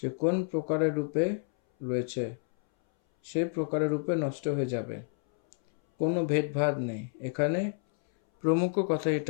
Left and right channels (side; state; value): right; silent; 58 dB below the other